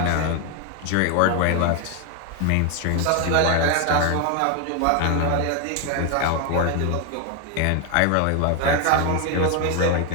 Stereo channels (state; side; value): different; both; correlation 0.01